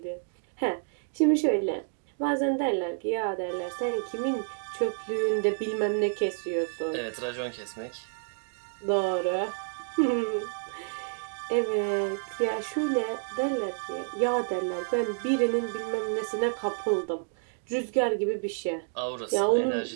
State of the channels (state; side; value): silent; left; digital silence